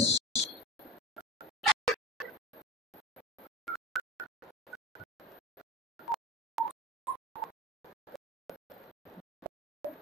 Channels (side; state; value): both; normal; correlation 0.31